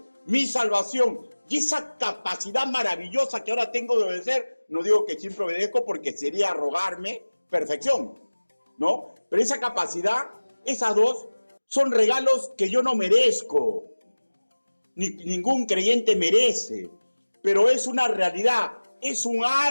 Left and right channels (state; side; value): inverted; both; correlation -1.00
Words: mi salvación y esa capacidad maravillosa que ahora tengo de obedecer. No digo que siempre obedezco porque sería arrogarme perfección, ¿no? Pero esa capacidad, esas dos, son regalos que yo no merezco, ningún creyente merece, pero es una realidad, es un